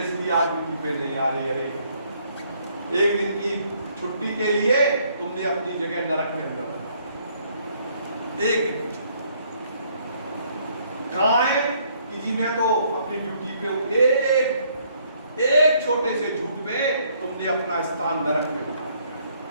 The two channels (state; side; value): inverted; both; correlation -0.67